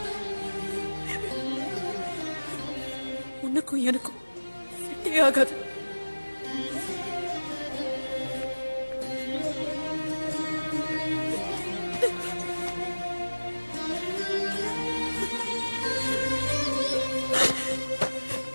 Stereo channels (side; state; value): both; inverted; correlation -1.00